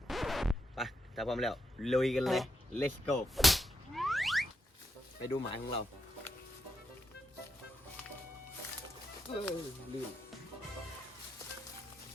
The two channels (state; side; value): normal; both; correlation 0.83